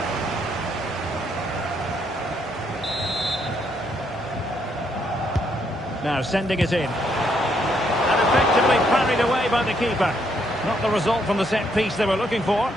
Now sending it in. And effectively parried away by the keeper. Not the result from the set piece they were looking for.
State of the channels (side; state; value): both; normal; correlation 0.73